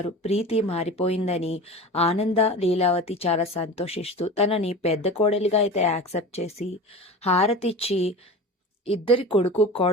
ప్రీతి మారిపోయిందని ఆనంద లీలావతి చాలా సంతోషిస్తూ తనని పెద్ద కోడలిగా అయితే యాక్సెప్ట్ చేసి హారతిచ్చి ఇద్దరి కొడుకు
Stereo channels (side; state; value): both; normal; correlation 0.33